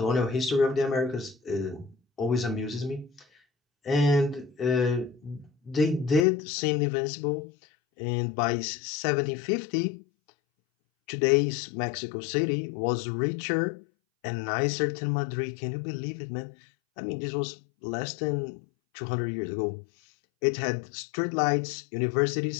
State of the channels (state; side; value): drops out; right; at 6.2 s